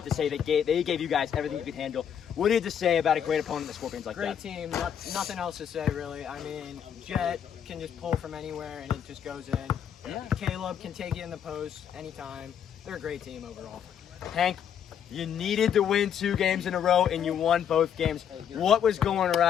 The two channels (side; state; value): right; quieter; 8.7 dB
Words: to say that they gave you guys everything you could handle. What do you have to say about a great opponent, the Scorpions, like Great that? team, nothing else to say really. I mean, Jet can just pull from anywhere and it just goes in. Yeah. Caleb can take it in the post anytime. They're a great team overall. Hank, You needed to win 2 games in a row, and you won both games. What was going